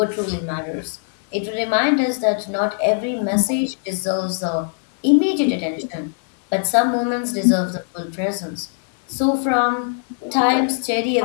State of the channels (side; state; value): right; silent; 59 dB below the other